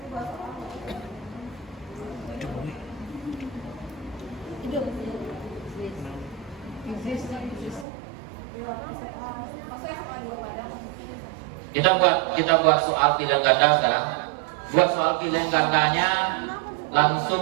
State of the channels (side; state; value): left; drops out; at 7.9 s